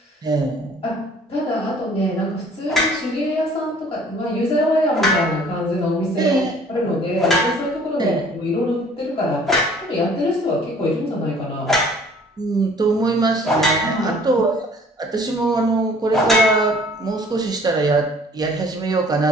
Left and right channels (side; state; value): both; normal; correlation 0.54